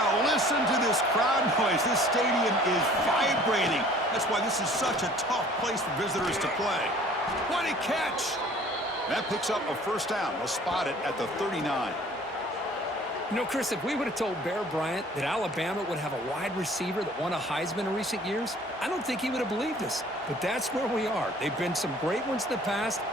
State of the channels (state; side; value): normal; both; correlation 0.51